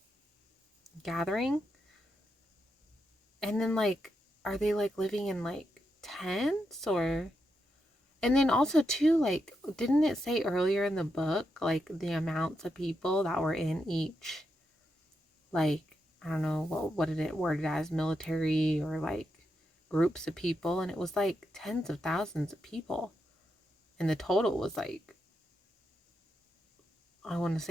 gathering? And then, like, are they like living in like tents or? And then also too, like, didn't it say earlier in the book like the amounts of people that were in each, like, I don't know what did it word it as, military or like groups of people, and it was like tens of thousands of people, and the total was like, I want to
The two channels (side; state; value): both; normal; correlation 0.84